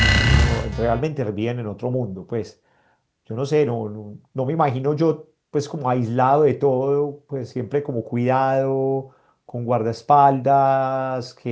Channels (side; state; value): both; identical; correlation 1.00